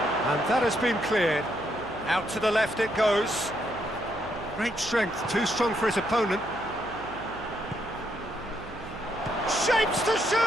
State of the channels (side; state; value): right; noise; hum, 15 dB below the sound